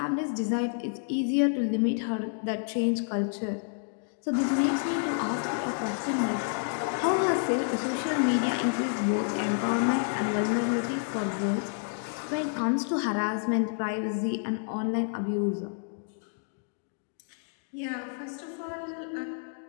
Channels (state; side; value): silent; right; digital silence